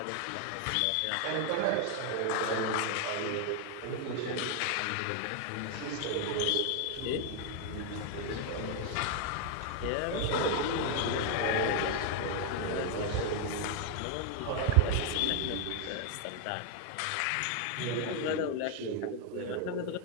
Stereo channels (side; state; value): both; different; correlation 0.00